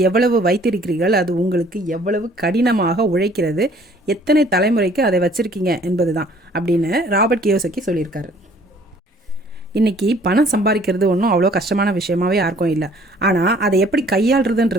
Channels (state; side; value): normal; both; correlation 0.56